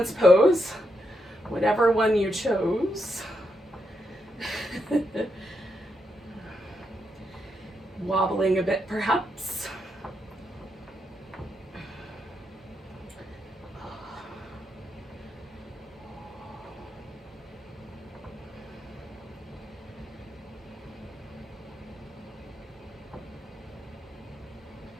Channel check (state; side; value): normal; both; correlation 0.82